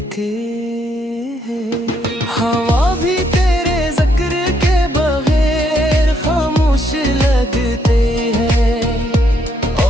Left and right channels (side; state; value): both; normal; correlation 0.73